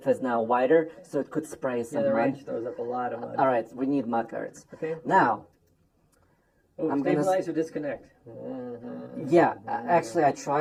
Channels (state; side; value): identical; both; correlation 1.00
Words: is now wider, so it could spray Yeah, some the mud. range throws up a lot of mud. All right, we need mud guards. Okay. Now, Oh, I'm gonna stabilize or disconnect? Mm-hmm. Yeah, actually, I